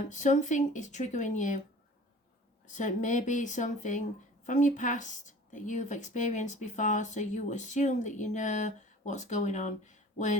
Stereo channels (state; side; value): normal; both; correlation 0.45